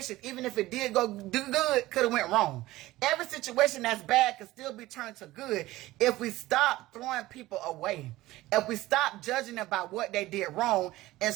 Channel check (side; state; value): left; quieter; 17.4 dB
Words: even if it did do good, could have went wrong. Every situation that's bad can still be turned to good if we stop throwing people away. If we stop judging about what they did wrong and